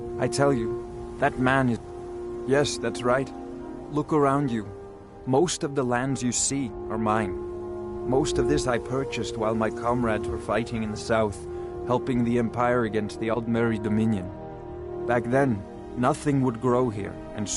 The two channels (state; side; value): identical; both; correlation 1.00